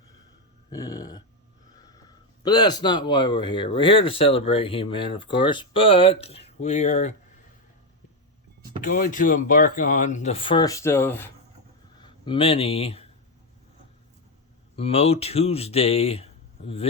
Yeah. But that's not why we're here. We're here to celebrate He-Man, of course, but we are going to embark on the first of many MOTUesday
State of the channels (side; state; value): both; normal; correlation 0.07